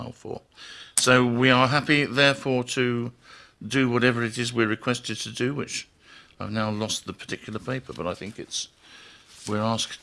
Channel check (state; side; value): identical; both; correlation 1.00